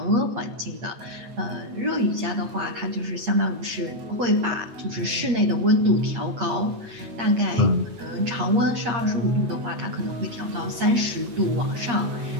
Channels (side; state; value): left; late; 8.5 ms